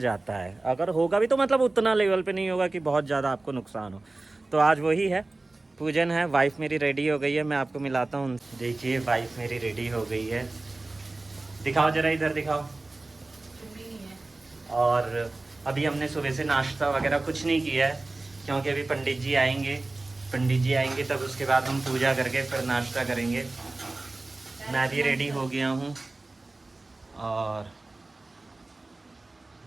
है। अगर होगा भी तो मतलब उतना लेवल पे नहीं होगा कि बहुत ज़्यादा आपको नुकसान हो। तो आज वही है, पूजन है। वाइफ मेरी रेडी हो गई है, मैं आपको मिलाता हूँ। देखिए, वाइफ मेरी रेडी हो गई है। दिखाओ जरा, इधर दिखाओ। और अभी हमने सुबह से नाश्ता वगैरह कुछ नहीं किया है, क्योंकि अभी पंडित जी आएंगे तब उसके बाद हम पूजा करके फिर नाश्ता करेंगे। मैं भी रेडी हो गया हूँ और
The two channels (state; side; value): quieter; left; 3.1 dB